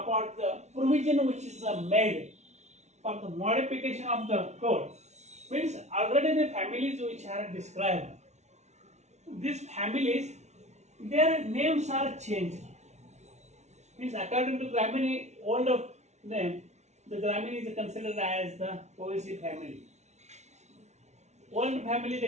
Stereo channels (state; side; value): late; left; 0.32 ms